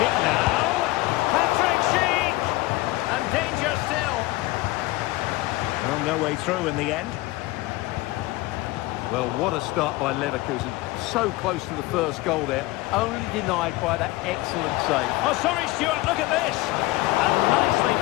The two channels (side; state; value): right; quieter; 19.8 dB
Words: now. Patrick Schick! And danger still. Well, no way through in the end. Well, what a start by Leverkusen. So close to the first goal there. Only denied by that excellent save. Oh, sorry, Stuart, look at this. And nicely